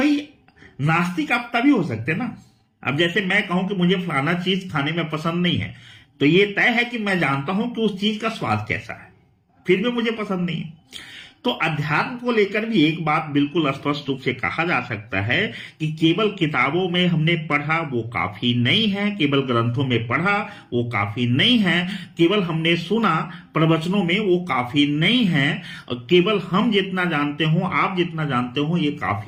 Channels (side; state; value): both; identical; correlation 1.00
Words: नास्तिक आप तभी हो सकते ना, अब जैसे मैं कहूं कि मुझे फलाना चीज खाने में पसंद नहीं है, तो ये तय है कि मैं जानता हूं कि उस चीज का स्वाद कैसा है, फिर भी मुझे पसंद नहीं है। तो अध्यात्म को लेकर भी एक बात बिल्कुल स्पष्ट रूप से कहा जा सकता है कि केवल किताबों में हमने पढ़ा वो काफी नहीं है, केवल ग्रंथों में पढ़ा वो काफी नहीं है, केवल हमने सुना प्रवचनों में वो काफी नहीं है, केवल हम जितना जानते हो, आप जितना जानते हो, ये